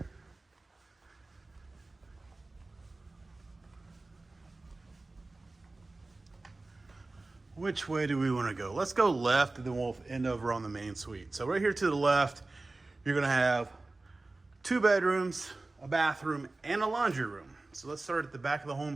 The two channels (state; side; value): quieter; left; 3.2 dB